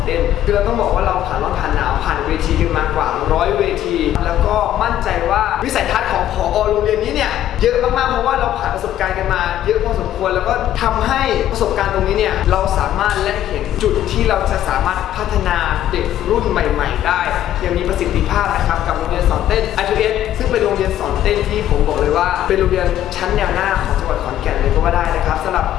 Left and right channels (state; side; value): quieter; right; 12.1 dB